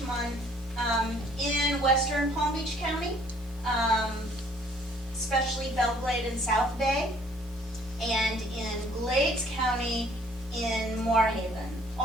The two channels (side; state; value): both; normal; correlation 0.59